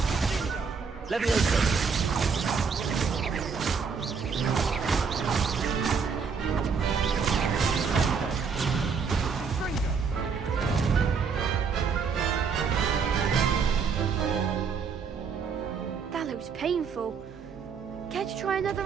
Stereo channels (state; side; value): quieter; left; 5.7 dB